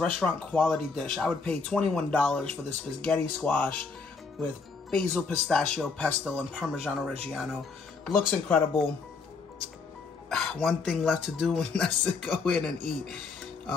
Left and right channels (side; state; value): right; quieter; 4.6 dB